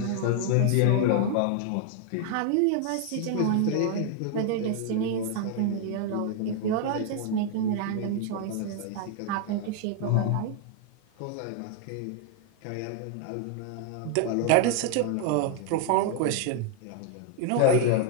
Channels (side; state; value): both; different; correlation 0.00